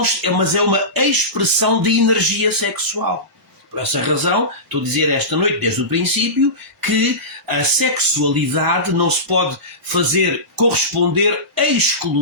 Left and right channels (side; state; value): both; normal; correlation -0.20